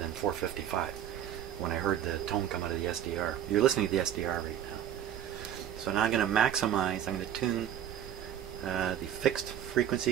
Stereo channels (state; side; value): quieter; left; 10.3 dB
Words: 455 when I heard the tone come out of the SDR. You're listening to the SDR right now. So now I'm going to maximize, I'm going to tune the fixed